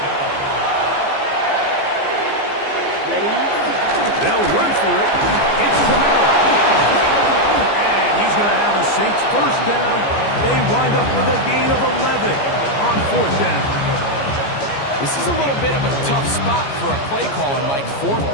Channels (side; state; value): right; late; 14 ms